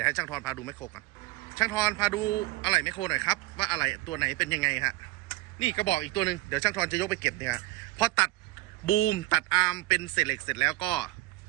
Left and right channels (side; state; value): left; quieter; 19.5 dB